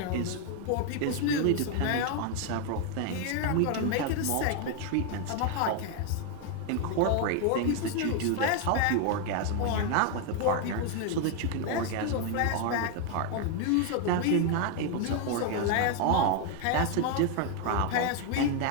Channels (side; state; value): both; different; correlation 0.01